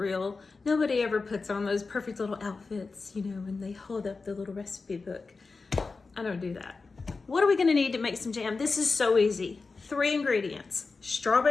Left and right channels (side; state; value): right; quieter; 4.2 dB